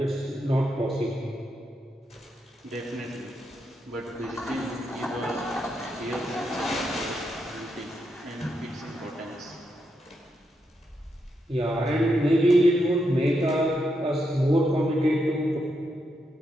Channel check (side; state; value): both; normal; correlation 0.82